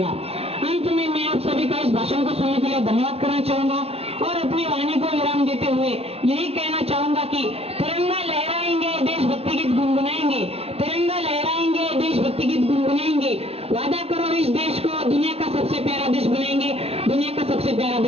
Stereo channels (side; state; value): left; late; 0.29 ms